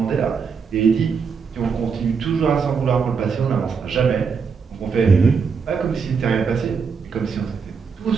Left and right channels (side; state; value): left; quieter; 5.8 dB